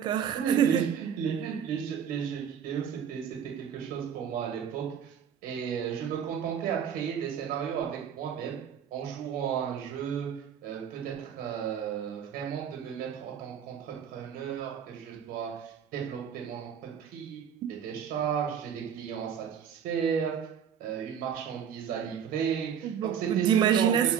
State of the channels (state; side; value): quieter; left; 8.2 dB